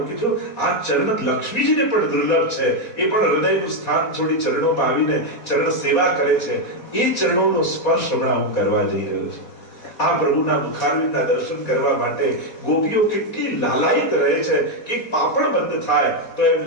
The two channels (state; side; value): late; right; 4.2 ms